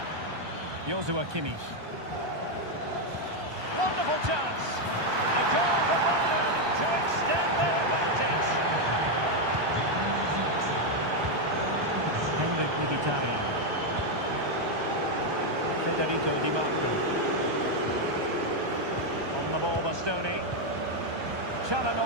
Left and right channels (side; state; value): left; late; 1.2 ms